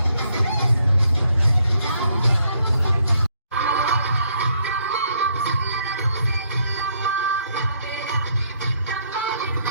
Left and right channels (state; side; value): inverted; both; correlation -0.71